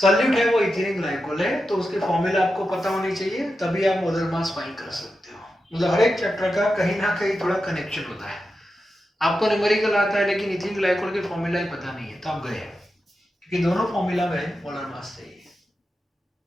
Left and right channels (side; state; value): both; normal; correlation 0.90